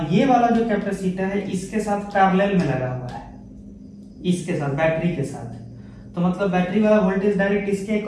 ये वाला जो कैपेसिटर है इसके साथ पैरेलल में लगा हुआ है, इसके साथ बैटरी के साथ, तो मतलब बैटरी वाला वोल्टेज डायरेक्ट इसके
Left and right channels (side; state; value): both; identical; correlation 1.00